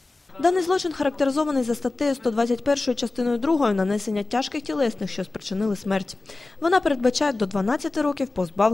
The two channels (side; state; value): right; quieter; 3.2 dB